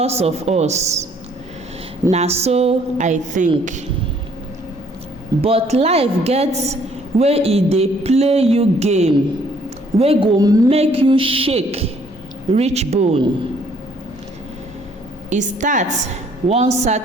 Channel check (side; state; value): both; normal; correlation 0.62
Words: of us. Na so I think. But life get wey e dey play you game wey go make you shake reach bone. E start one